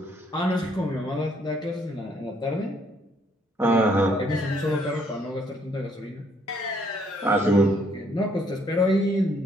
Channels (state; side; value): normal; both; correlation 0.67